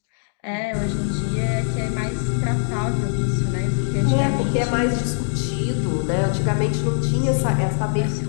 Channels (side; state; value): right; silent; digital silence